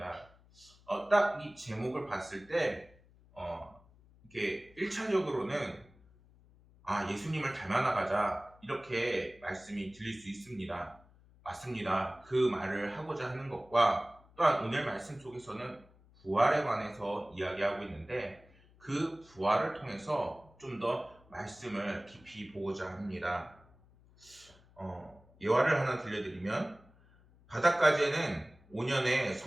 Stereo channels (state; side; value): noise; left; hum, 27 dB below the sound